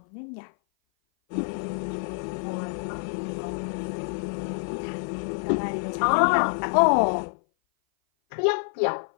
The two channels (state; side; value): silent; right; 56 dB below the other